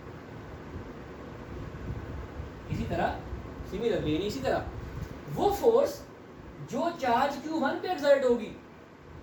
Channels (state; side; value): identical; both; correlation 1.00